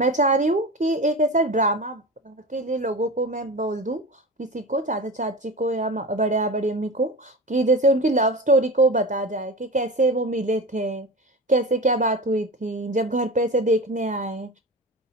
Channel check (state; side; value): normal; both; correlation 0.29